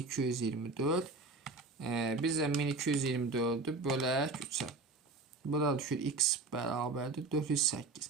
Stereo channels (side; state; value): left; quieter; 3.6 dB